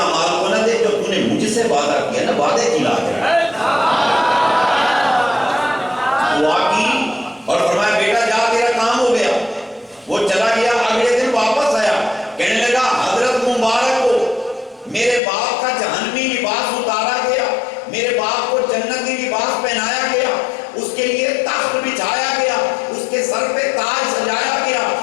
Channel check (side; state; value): right; drops out; at 15.2 s